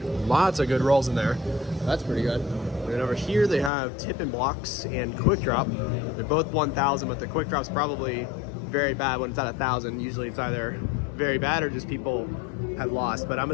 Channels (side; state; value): right; drops out; at 3.7 s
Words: Lots of good rolls in there. That's pretty good. And over here they have Tip and Blocks and Quick Drop. They're both 1,000, but the Quick Drop's probably very bad when it's at 1,000. Usually it's either very bad or just people have lost, but I'm